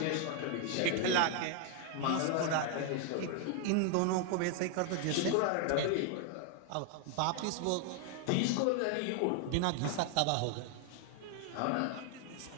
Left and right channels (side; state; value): both; different; correlation 0.00